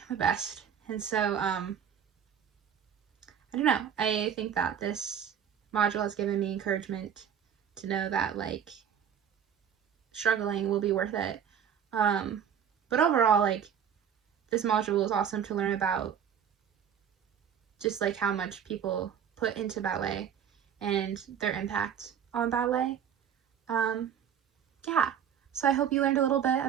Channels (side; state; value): left; quieter; 8.3 dB